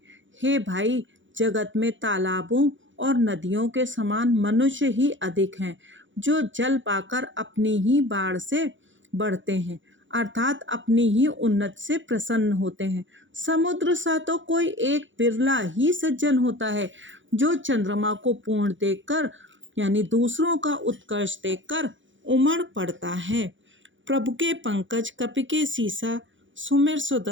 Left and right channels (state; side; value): late; left; 0.55 ms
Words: हे भाई, जगत में तालाबों और नदियों के समान मनुष्य ही अधिक हैं, जो जल पाकर अपनी ही बाढ़ से बढ़ते हैं, अर्थात अपनी ही उन्नति से प्रसन्न होते हैं। समुद्र सा तो कोई एक बिरला ही सज्जन होता है, जो चंद्रमा को पूर्ण देखकर यानी दूसरों का उत्कर्ष देखकर उमड़ पड़ता है। प्रभु के पंकज कपि के सीसा, सुमिर